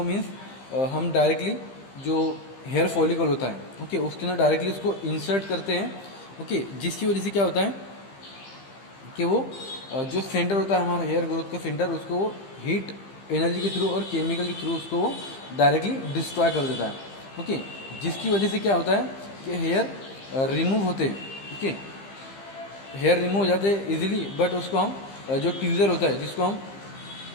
मीन्स हम डायरेक्टली जो हेयर फॉलिकल होता है, ओके, उसके अंदर डायरेक्टली उसको इंसर्ट करते हैं. ओके. जिसकी वजह से क्या होता है कि वो जो सेंटर होता है हमारा हेयर ग्रोथ का सेंटर, उसको वो हीट एनर्जी के थ्रू और केमिकल के थ्रू उसको वो डायरेक्टली डिस्ट्रॉय कर देता है. ओके. जिसकी वजह से क्या होता है कि हेयर रिमूव होते हैं. ओके. हेयर रिमूव हो जाते हैं इजीली, बट उसको हम जो ट्यूजर होता है जिसको हम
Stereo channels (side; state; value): right; late; 15 ms